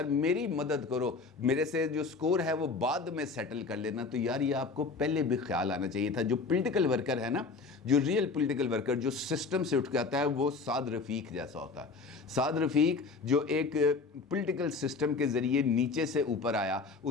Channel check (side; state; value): right; quieter; 4.4 dB